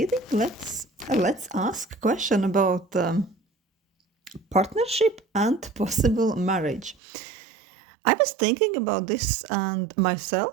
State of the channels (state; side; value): drops out; left; at 7.0 s